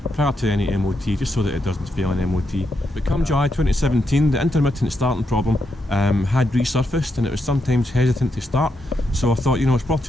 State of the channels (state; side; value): normal; both; correlation 0.82